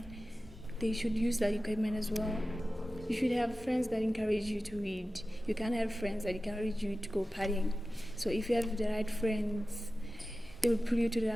they should use that equipment as well. You should have friends that encourage you to read. You can't have friends that encourage you to go partying. So if you have the right friends, they will pull you to the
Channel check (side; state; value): both; normal; correlation 0.95